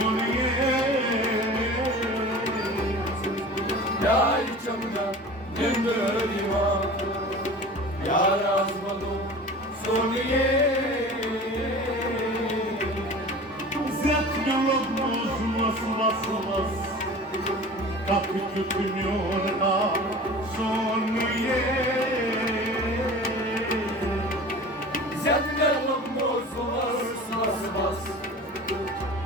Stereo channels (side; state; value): both; normal; correlation 0.38